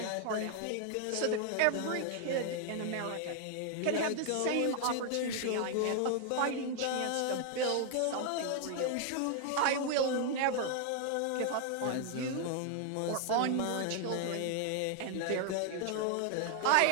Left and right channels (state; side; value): different; both; correlation 0.00